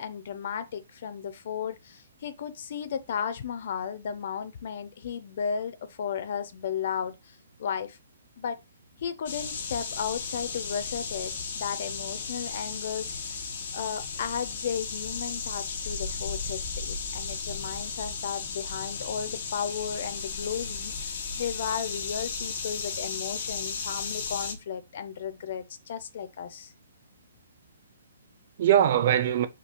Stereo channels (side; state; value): both; inverted; correlation -0.53